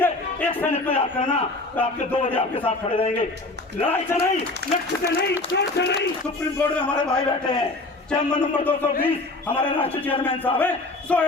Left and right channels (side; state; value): right; quieter; 3.0 dB